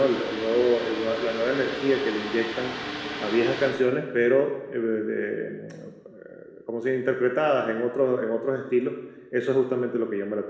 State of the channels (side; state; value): both; identical; correlation 1.00